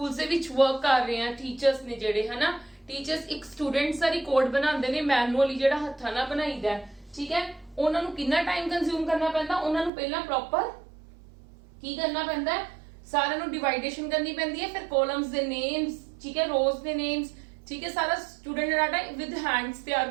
ਦੇ ਵਿੱਚ ਵਰਕ ਕਰ ਰਹੇ ਆ, ਟੀਚਰਸ ਨੇ ਜਿਹੜੇ ਹਨਾ, ਟੀਚਰਸ ਇੱਕ ਸਟੂਡੈਂਟਸ ਦਾ ਰਿਕਾਰਡ ਬਣਾਉਂਦੇ ਨੇ ਮੈਨੂਅਲੀ ਜਿਹੜਾ ਹੱਥਾਂ ਨਾਲ ਬਣਾਈਦਾ। ਠੀਕ ਹੈ, ਉਹਨਾਂ ਨੂੰ ਕਿੰਨਾ ਟਾਈਮ ਕੰਜ਼ਿਊਮ ਕਰਨਾ ਪੈਂਦਾ, ਉਹਨਾਂ ਨੂੰ ਪਹਿਲਾਂ ਪ੍ਰੋਪਰ ਕੀ ਕਰਨਾ ਪੈਂਦਾ, ਸਾਰਿਆਂ ਨੂੰ ਡਿਵਾਈਡੇਸ਼ਨ ਕਰਨੀ ਪੈਂਦੀ ਹੈ, ਫਿਰ ਕਾਲਮਸ ਦੇ ਨੇਮਸ, ਠੀਕ ਹੈ, ਰੋਜ਼ ਦੇ ਨੇਮਸ, ਠੀਕ ਹੈ, ਸਾਰਾ ਸਟੂਡੈਂਟ ਡਾਟਾ ਵਿਦ ਹੈਂਡਸ ਤਿਆਰ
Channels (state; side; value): drops out; left; at 9.9 s